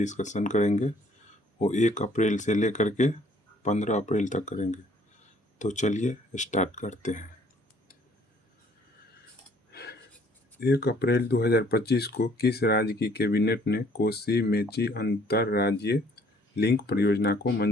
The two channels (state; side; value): normal; both; correlation 0.60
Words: करेंगे वो 1 अप्रैल से लेकर के 15 अप्रैल तक करेंगे। तो चलिए स्टार्ट करते हैं। 1 अप्रैल 2025 को किस राज्य की कैबिनेट ने कोसी मेची अंतरराज्यीय लिंक परियोजना को